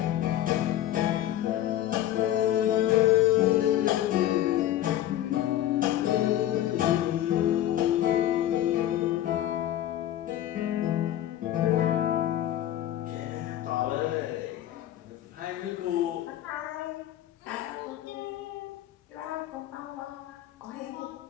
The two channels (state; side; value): quieter; right; 12.6 dB